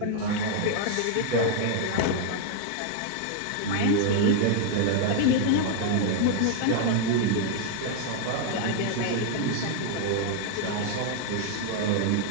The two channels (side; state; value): both; different; correlation 0.00